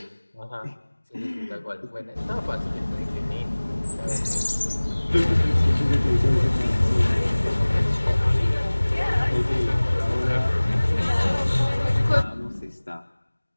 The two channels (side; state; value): both; inverted; correlation -1.00